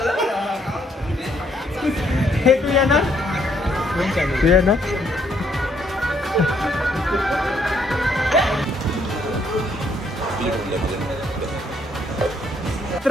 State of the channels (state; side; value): normal; both; correlation 0.70